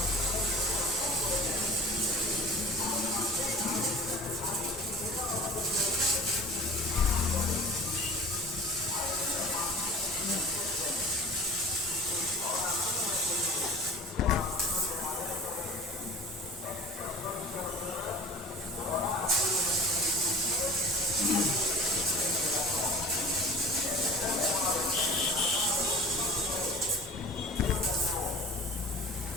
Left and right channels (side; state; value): both; normal; correlation 0.41